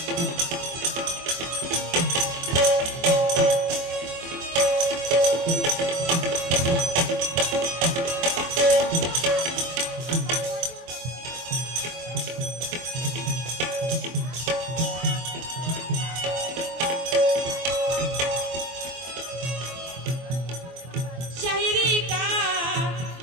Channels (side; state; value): left; late; 24 ms